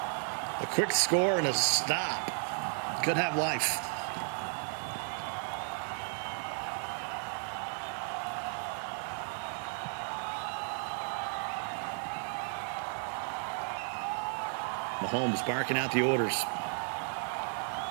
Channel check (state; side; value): silent; left; 55 dB below the other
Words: A quick score and a stop could have life. Mahomes barking out the orders.